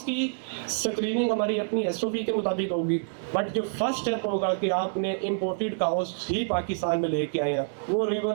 की स्क्रीनिंग हमारी अपनी एसओपी के मुताबिक होगी। बट जो फर्स्ट स्टेप होगा कि आपने इंपोर्टेड काउस ही पाकिस्तान में लेके आए हैं, वो रिवर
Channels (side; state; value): left; silent; 60 dB below the other